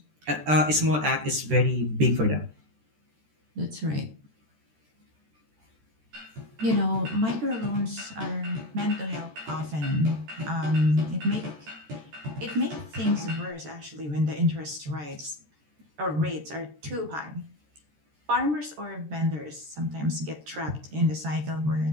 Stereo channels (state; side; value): late; left; 13 ms